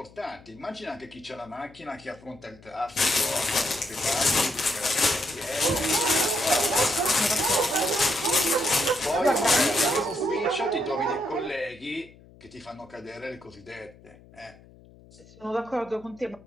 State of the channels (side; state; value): left; noise; hum, 24 dB below the sound